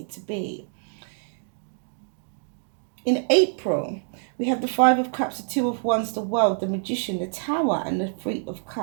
to be. In April, we have the Five of Cups, the Two of Wands, the World, the Magician, the Tower, and the Three of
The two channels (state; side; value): silent; left; 61 dB below the other